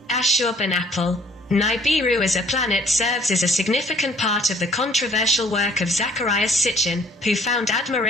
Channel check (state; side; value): normal; both; correlation 0.58